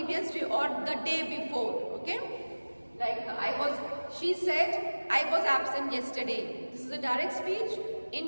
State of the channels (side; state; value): both; inverted; correlation -1.00